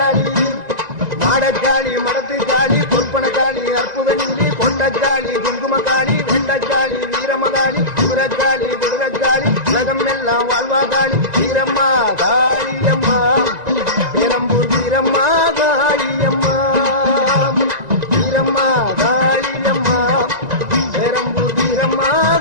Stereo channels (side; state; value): left; late; 1.9 ms